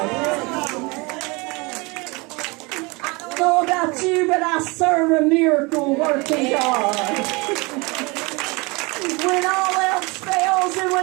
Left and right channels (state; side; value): quieter; left; 26.6 dB